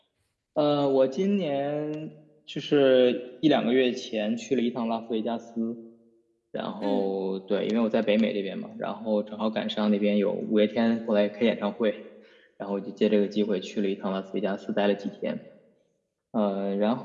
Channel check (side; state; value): both; identical; correlation 1.00